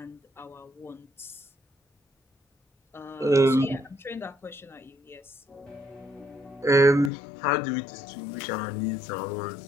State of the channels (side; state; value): right; drops out; at 7.1 s